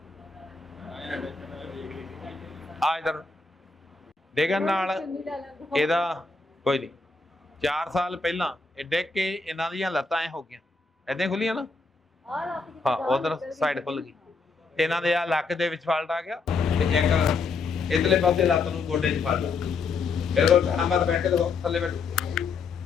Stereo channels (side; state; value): right; quieter; 4.3 dB